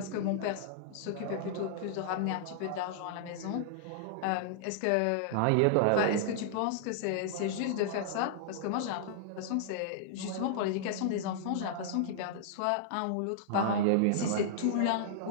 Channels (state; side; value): different; both; correlation -0.01